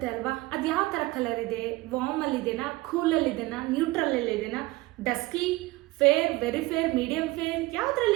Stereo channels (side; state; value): left; quieter; 20.0 dB